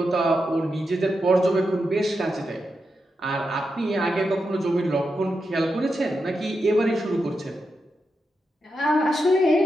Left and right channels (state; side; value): normal; both; correlation 0.87